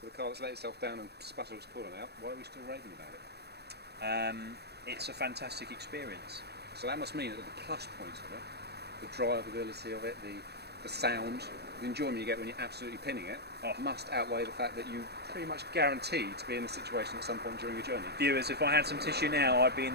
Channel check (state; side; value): late; left; 0.47 ms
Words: with a car that's let itself down and sputtered its coolant out? Why are we still raving about it? It's a fantastic experience. So that must mean that the plus points of it, the drivability of it, the sound, the enjoyment you get when you're absolutely pinning it, must outweigh the fact that you pretty much guaranteed to be in this situation at some point during your journey. Viewers, if I had some tissue now, I'd be in